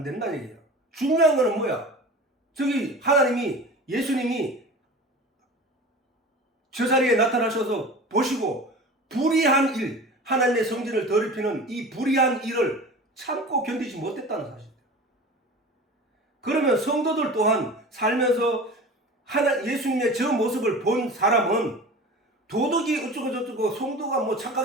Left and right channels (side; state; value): both; normal; correlation 0.36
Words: 된다는 얘기야. 중요한 거는 뭐야? 저기 예수님이 저 자리에 나타나셔서 보시고 불의한 일, 하나님의 성전을 더럽히는 이 불의한 일을 참고 견디지 못했다는 사실이에요. 그러면 성도들 또한 살면서 예수님의 저 모습을 본 사람은 도덕이 어쩌고저쩌고 성도가 뭐